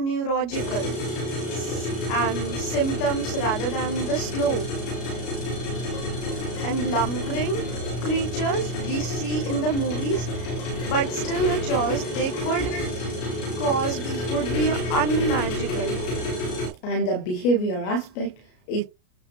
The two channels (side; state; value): right; late; 33 ms